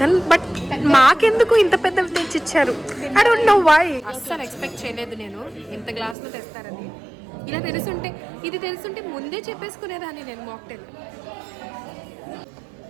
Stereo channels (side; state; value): left; drops out; at 6.2 s